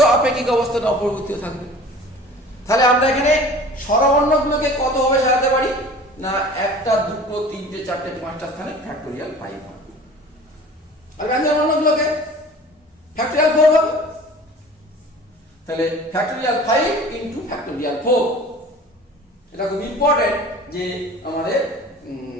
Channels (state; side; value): normal; both; correlation 0.43